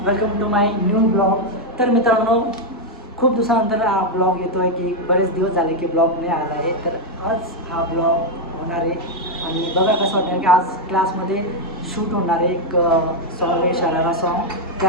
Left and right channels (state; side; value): normal; both; correlation 0.01